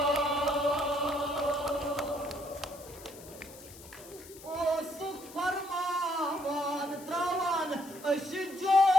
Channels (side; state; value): left; noise; hiss, 18 dB below the sound